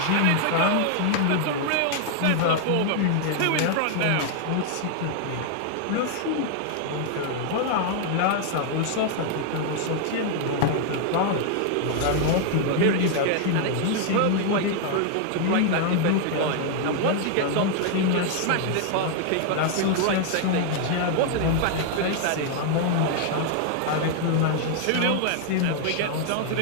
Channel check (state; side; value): different; both; correlation 0.00